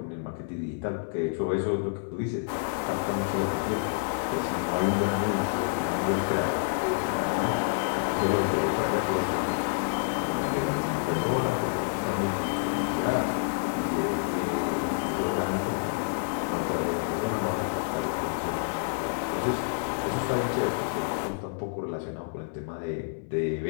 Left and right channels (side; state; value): right; silent; 59 dB below the other